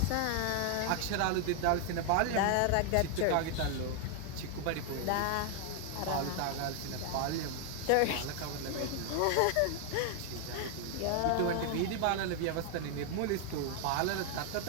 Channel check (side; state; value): both; different; correlation 0.00